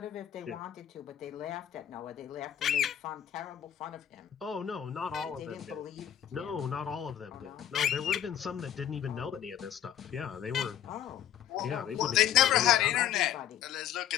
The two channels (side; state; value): right; quieter; 10.4 dB